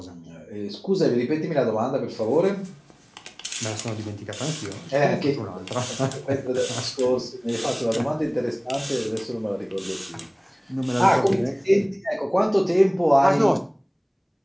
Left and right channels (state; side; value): identical; both; correlation 1.00